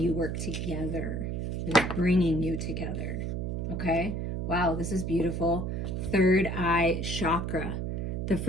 work together, that is bringing you together? Okay? Wow, this is beautiful. Third eye chakra. The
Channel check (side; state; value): right; noise; hum, 2 dB below the sound